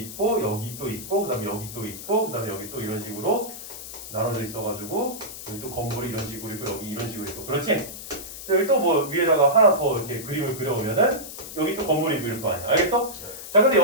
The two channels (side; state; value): left; noise; hiss, 11 dB below the sound